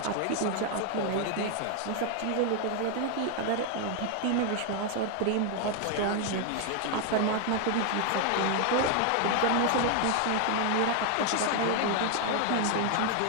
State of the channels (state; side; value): different; both; correlation 0.00